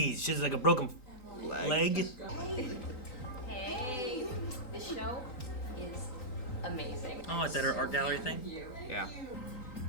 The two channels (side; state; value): right; late; 3.9 ms